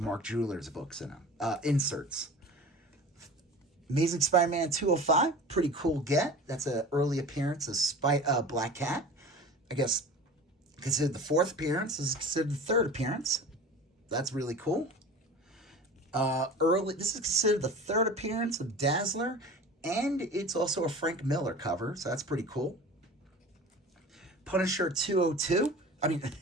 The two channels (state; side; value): normal; both; correlation 0.38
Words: Jewelers books in them, inserts. Amazing Spider-Man 205, pretty cool get. That's an early appearance of Black Cat. I guess considered the 4th appearance, is considered the 3rd appearance. That's really cool. This is considered the 3rd appearance of Dazzler, and it's also a Frank Miller cover, so that's pretty cool. Punisher 202,